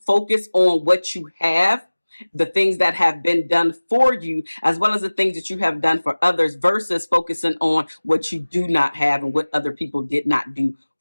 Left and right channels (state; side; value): inverted; both; correlation -1.00